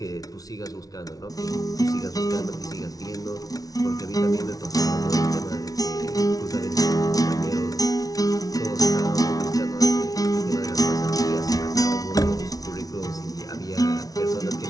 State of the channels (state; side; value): late; right; 0.18 ms